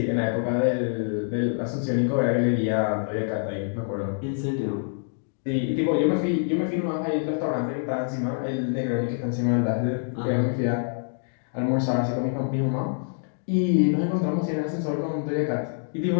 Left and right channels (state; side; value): silent; right; digital silence